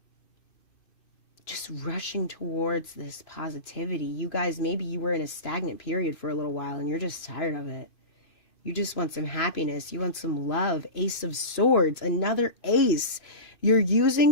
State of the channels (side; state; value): right; late; 2.6 ms